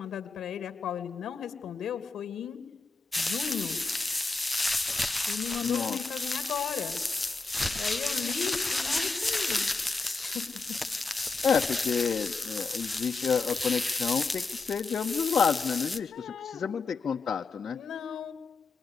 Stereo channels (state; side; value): quieter; right; 4.2 dB